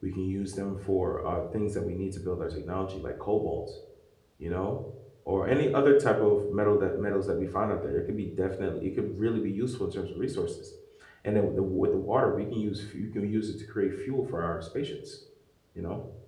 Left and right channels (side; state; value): both; identical; correlation 1.00